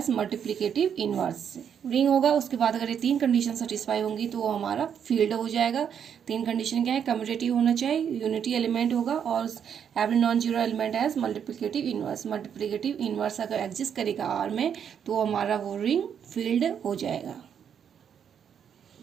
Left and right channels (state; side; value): quieter; left; 8.1 dB